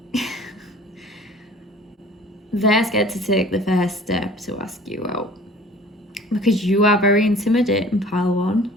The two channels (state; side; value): normal; both; correlation 0.48